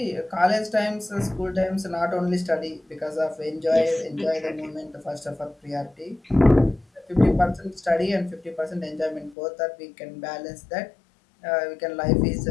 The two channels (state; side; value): drops out; right; at 9.3 s